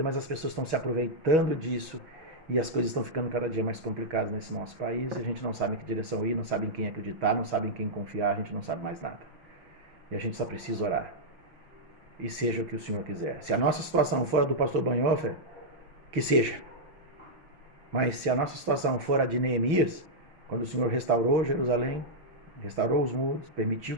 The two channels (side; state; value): left; late; 6.2 ms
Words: mas as pessoas estão se aproveitando disso e as coisas estão ficando cada dia mais complicadas nesse nosso país. A gente não sabe em que direção ir, não sabe em quem acreditar, não sabe em quem confiar, a gente não sabe mais nada. E a gente só precisa orar. E seja o que o Senhor quiser. Se a nossa situação for a do pastor Bonhoeffer, que seja. Mas se a nossa situação for a de Neemias, quando o Senhor restaurou Jerusalém, restaurou os muros, permitiu